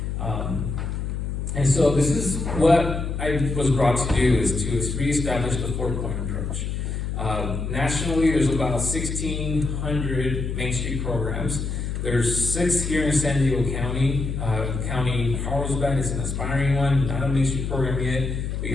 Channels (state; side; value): noise; left; hum, 3 dB below the sound